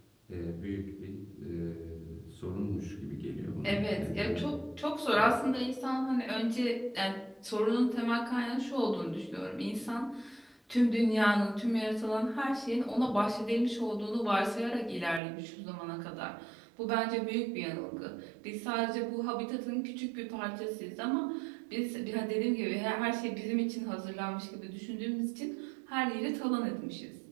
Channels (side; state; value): left; drops out; at 15.2 s